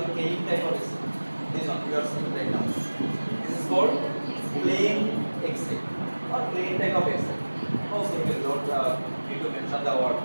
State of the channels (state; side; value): inverted; both; correlation -1.00